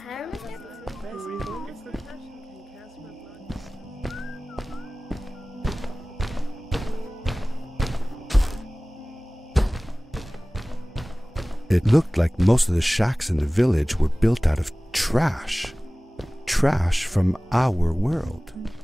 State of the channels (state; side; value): normal; both; correlation 0.98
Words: It looked like most of the shacks in the village were built out of trash. Trash from our world.